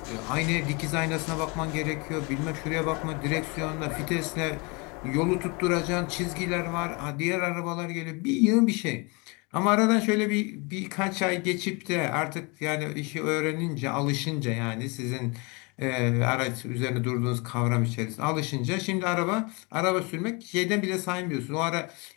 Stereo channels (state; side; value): quieter; right; 29.5 dB